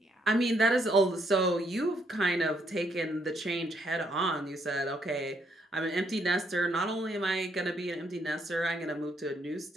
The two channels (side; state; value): both; normal; correlation 0.72